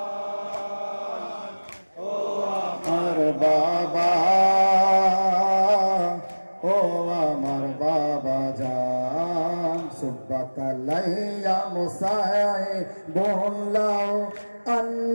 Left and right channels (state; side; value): inverted; both; correlation -1.00